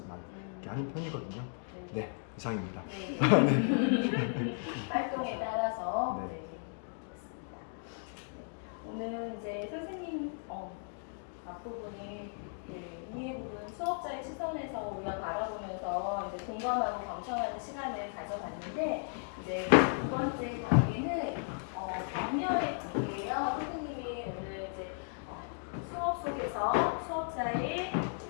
이렇게 하는 편이거든요. 네, 이상입니다. 활동에 따라서 네. 그렇습니다. 오늘 이제 선생님 앞부분이 이해 부분 수업자의 시선에서 우리가 바라보면서 이제 공감하고 경청하는 시간을 가져봤는데 이제 두 번째 단계는 격려의 단계예요. 선생님이 오늘 이제 수업 속에서 수업자의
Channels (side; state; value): right; silent; 54 dB below the other